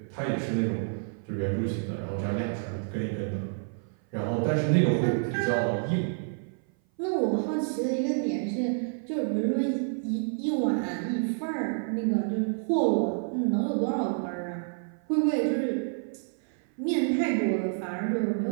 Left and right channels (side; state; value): left; silent; 56 dB below the other